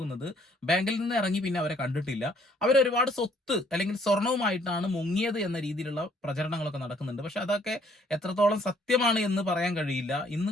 ബാങ്കിൽ നിന്ന് ഇറങ്ങി പിന്നെ അവരെ കണ്ടിട്ടില്ല. അവരൊരുപാട് സ്വത്ത് അല്ലെങ്കിൽ സ്വർണവുമായിട്ടാണ് മുങ്ങിയത് എന്ന രീതിയിലുള്ള പ്രചരണങ്ങളൊക്കെ നടക്കുന്നുണ്ട്. പക്ഷെ അതൊക്കെ എത്രത്തോളം സത്യമാണ് എന്ന് പറയാൻ കഴിയില്ല.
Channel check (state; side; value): normal; both; correlation 0.63